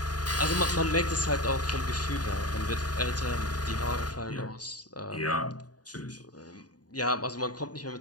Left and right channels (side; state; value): right; late; 0.68 ms